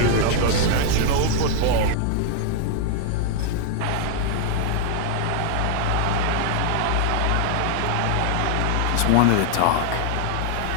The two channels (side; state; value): both; different; correlation 0.00